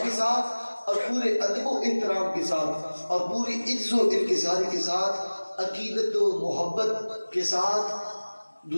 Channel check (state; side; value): inverted; both; correlation -1.00